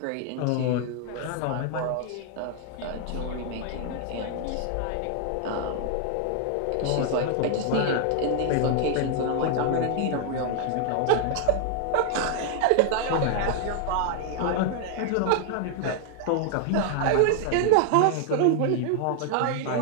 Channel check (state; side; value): different; both; correlation 0.00